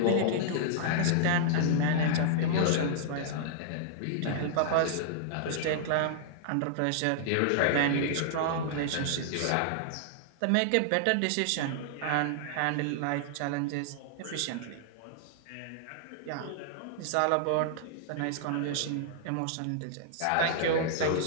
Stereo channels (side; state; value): both; different; correlation -0.01